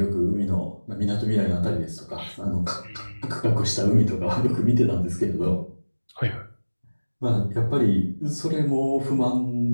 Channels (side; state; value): both; inverted; correlation -1.00